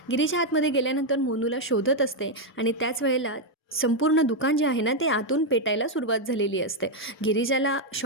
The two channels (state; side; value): normal; both; correlation 0.02